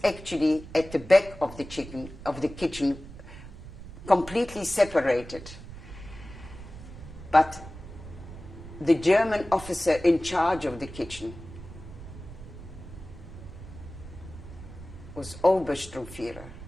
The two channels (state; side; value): noise; right; rumble, 14 dB below the sound